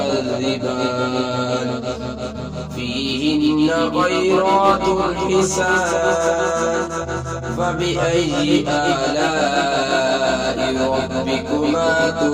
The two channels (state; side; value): identical; both; correlation 1.00